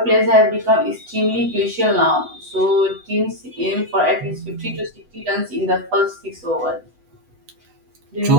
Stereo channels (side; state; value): left; late; 8.0 ms